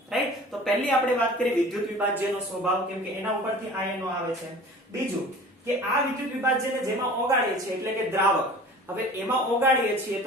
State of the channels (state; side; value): normal; both; correlation 0.43